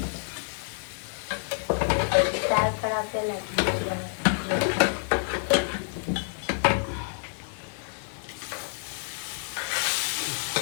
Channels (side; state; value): right; silent; digital silence